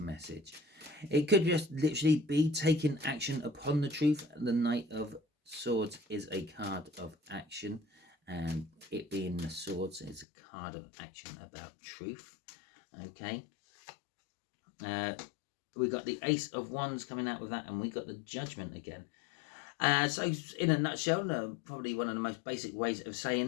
It could just literally be taking action upon the truth. The Knight of Swords is a card of action, and it being the swords is a card of action about truth. Okay. We got the Ace of Wands coming out with that, and we got the Judgment again. So in a nutshell, probably one of the most basic ways of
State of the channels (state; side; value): drops out; right; at 10.2 s